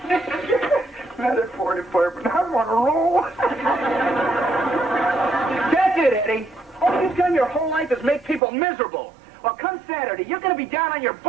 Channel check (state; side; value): drops out; left; at 8.4 s